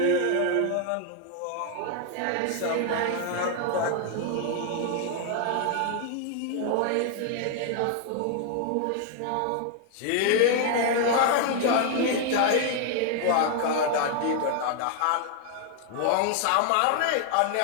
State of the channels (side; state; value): both; different; correlation 0.00